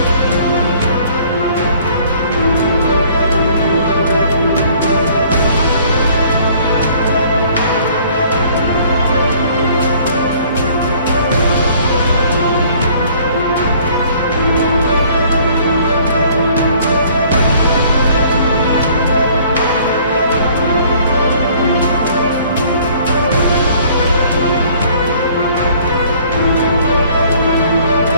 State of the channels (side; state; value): both; inverted; correlation -0.56